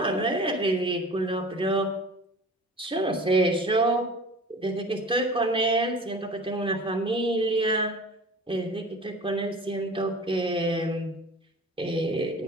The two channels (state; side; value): normal; both; correlation 0.41